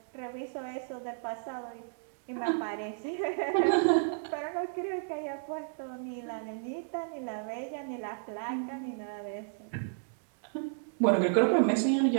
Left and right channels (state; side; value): silent; left; digital silence